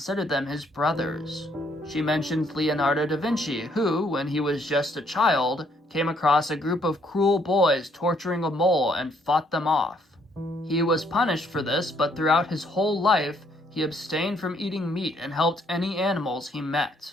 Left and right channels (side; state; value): both; normal; correlation 0.68